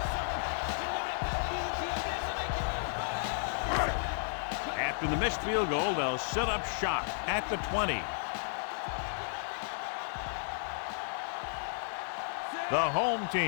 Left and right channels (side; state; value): right; silent; digital silence